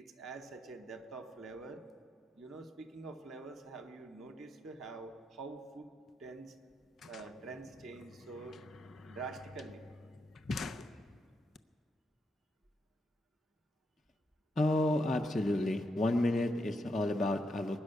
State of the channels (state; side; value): normal; both; correlation 0.82